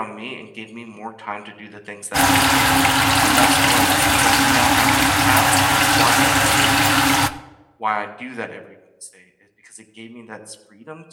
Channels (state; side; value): identical; both; correlation 1.00